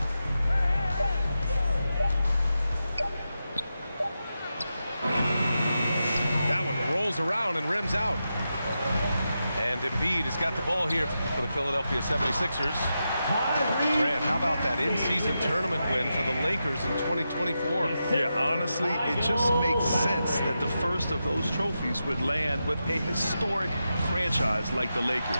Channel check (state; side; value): inverted; both; correlation -0.88